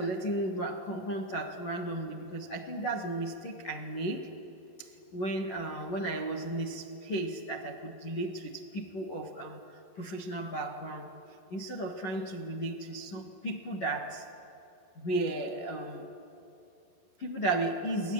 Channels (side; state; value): right; late; 11 ms